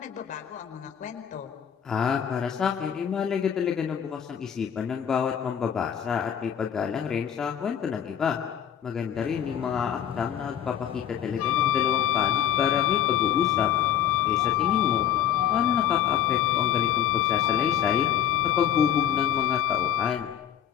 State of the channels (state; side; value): quieter; right; 9.6 dB